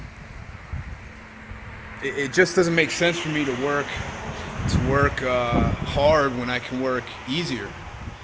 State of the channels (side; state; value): both; identical; correlation 1.00